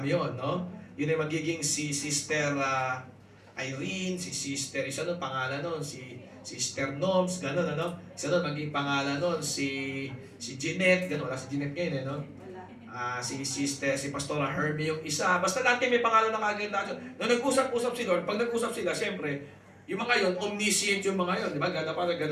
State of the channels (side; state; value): both; identical; correlation 1.00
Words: yun, no? Yun ay magiging si Sister Irene, si Sister, isa nun pangalan nun, si Sister Noms, gano'n, ano? Isa nun magiging pangalan nun, si Jeanette, gano'n, wala si Jeanette ngayon, no? Si Sister, si Pastora Herbie yung isa. Basta dati may pangalan na kaganda. Nung nag-usap-usap si Lord, pag nag-usap sila, siyempre, yung mga yun, omniscient yung mga yun. Di ba? Gada pa,